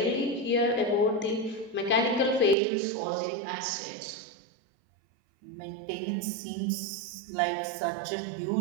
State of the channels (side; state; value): left; drops out; at 2.6 s